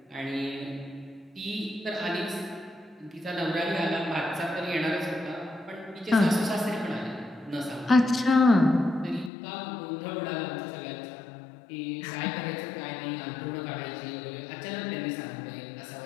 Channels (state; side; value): drops out; right; at 9.3 s